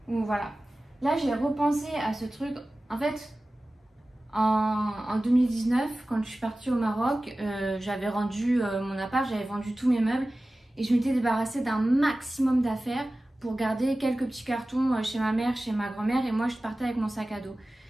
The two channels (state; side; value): normal; both; correlation 0.96